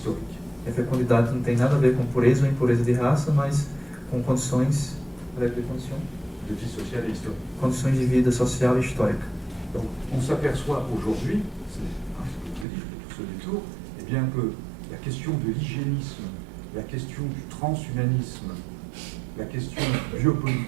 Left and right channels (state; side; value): drops out; left; at 12.7 s